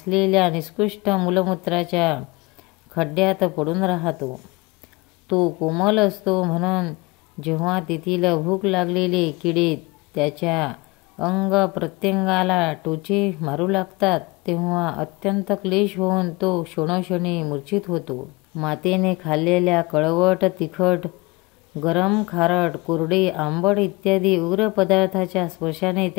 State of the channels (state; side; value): quieter; right; 24.2 dB